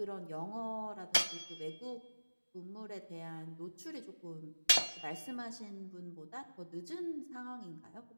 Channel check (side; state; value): both; inverted; correlation -1.00